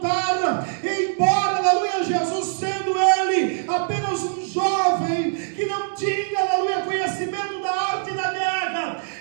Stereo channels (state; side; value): silent; left; digital silence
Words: e embora, aleluia, Jesus sendo ele apenas um jovem, que não tinha, aleluia, conhecimento da arte da guerra,